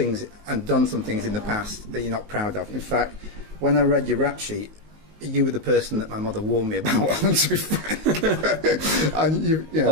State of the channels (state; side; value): late; left; 19 ms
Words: and done some things in the past that you're not proud of. In fact, when I read your rap sheet, you were the person that my mother warned me about. To be frank, and you know,